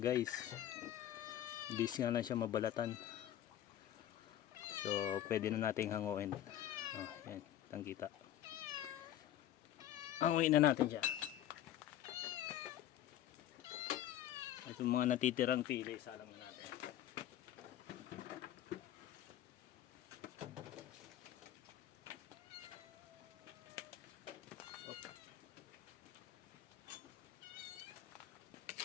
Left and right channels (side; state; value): right; quieter; 12.0 dB